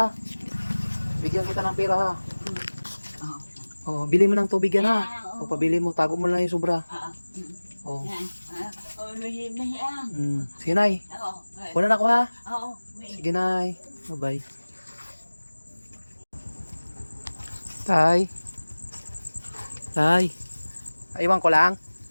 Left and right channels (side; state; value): both; inverted; correlation -1.00